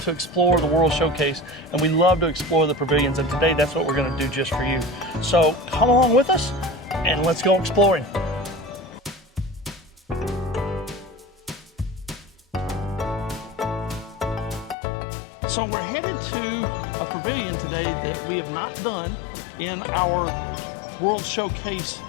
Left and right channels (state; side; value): drops out; right; at 14.8 s